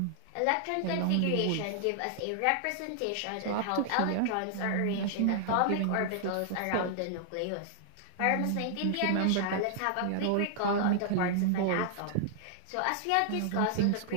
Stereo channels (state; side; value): different; both; correlation -0.01